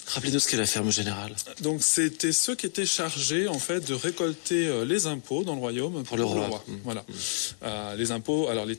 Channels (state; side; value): silent; right; digital silence